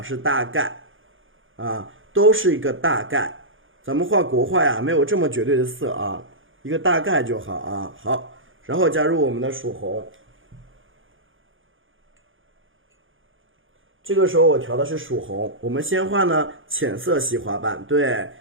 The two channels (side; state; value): left; late; 0.58 ms